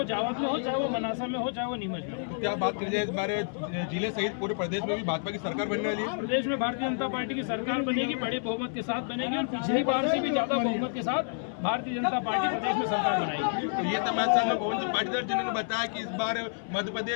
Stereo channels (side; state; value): right; silent; 57 dB below the other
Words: जावद में हो, चाहे वो मनासा में हो, चाहे वो नीमच में हो। क्या बात की जाए इस बार जिले सहित पूरे प्रदेश में भी भाजपा की सरकार बनने वाली है? प्रदेश में भारतीय जनता पार्टी की सरकार बनेगी, बड़े बहुमत के साथ बनेगी और पिछली बार से भी ज्यादा बहुमत के साथ भारतीय जनता पार्टी प्रदेश में सरकार बनाएगी। तो ये तमाम पवन जी पाटीदार जिन्होंने बताया कि इस बार मध्य